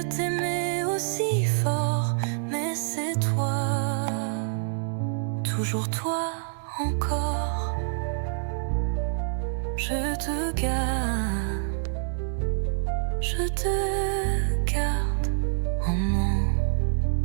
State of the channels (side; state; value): left; silent; digital silence